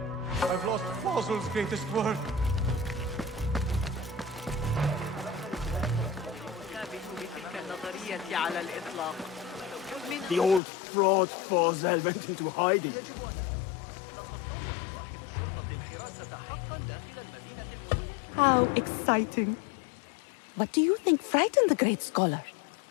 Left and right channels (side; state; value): right; drops out; at 10.6 s